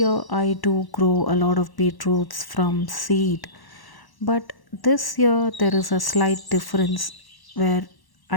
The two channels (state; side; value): late; right; 1.1 ms